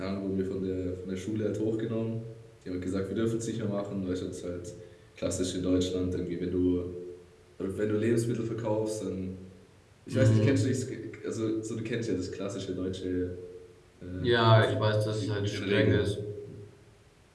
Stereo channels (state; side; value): identical; both; correlation 1.00